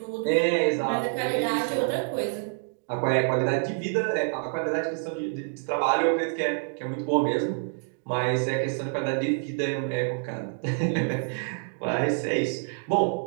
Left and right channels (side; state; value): left; silent; 58 dB below the other